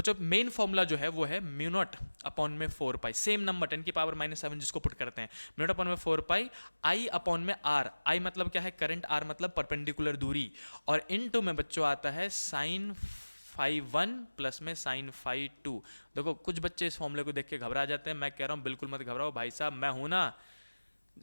मेन फॉर्मूला जो है वो है म्यू नॉट अपॉन में 4 पाई, सेम नंबर 10 की पावर -7 जिसको पुट करते हैं, म्यू नॉट अपॉन में 4 पाई आई अपॉन में आर। आई मतलब क्या है? करंट, आर मतलब परपेंडिकुलर दूरी, और इनटू में बच्चों आता है sin φ1 प्लस में sin φ2। देखो कुछ बच्चे इस फॉर्मूले को देख के घबरा जाते हैं, मैं कह रहा हूँ बिल्कुल मत घबराओ भाई साहब, मैं हूं ना,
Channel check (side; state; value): both; inverted; correlation -1.00